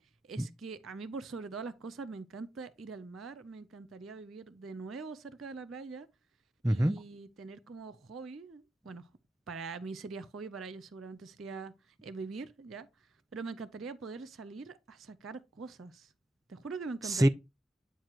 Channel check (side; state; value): both; normal; correlation 0.86